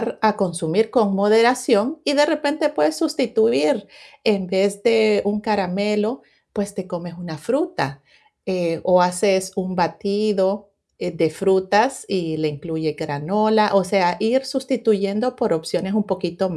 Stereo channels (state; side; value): identical; both; correlation 1.00